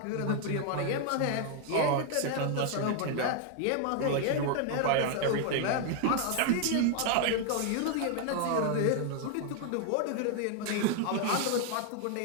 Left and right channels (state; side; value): different; both; correlation 0.00